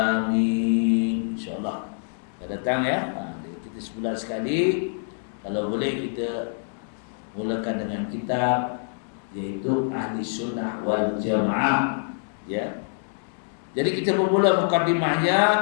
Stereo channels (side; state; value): right; silent; digital silence